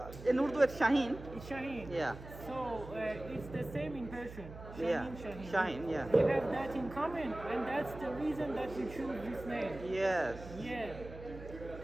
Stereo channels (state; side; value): noise; right; hum, 13 dB below the sound